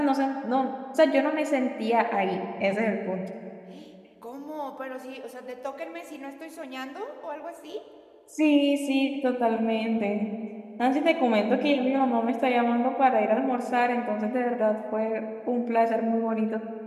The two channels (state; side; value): identical; both; correlation 1.00